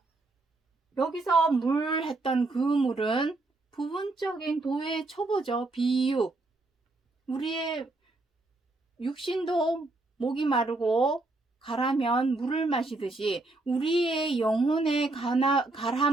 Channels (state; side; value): quieter; left; 3.1 dB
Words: 여기서 물 했던 그 물은 부분적인 도의 초보죠. 비유. 우리의 육신도 목이 마르고 가라면 물을 마시듯이 우리의 영혼의